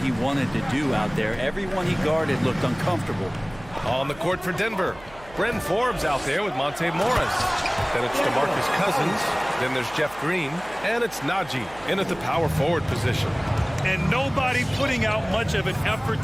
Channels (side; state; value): right; noise; hum, 21 dB below the sound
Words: wanted to do out there. Everyone he guarded looked uncomfortable. On the court for Denver, Bryn Forbes out there with Monte Morris. Then it's DeMarcus Cousins. Then there's Jeff Green. And it's Najee in at the power forward position. And nobody putting out much of an effort